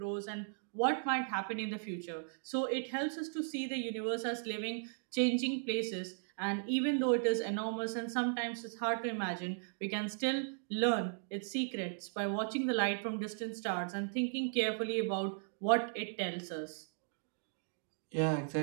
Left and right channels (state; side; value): silent; left; digital silence